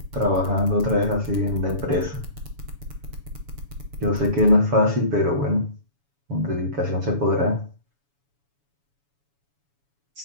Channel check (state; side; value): late; left; 7.1 ms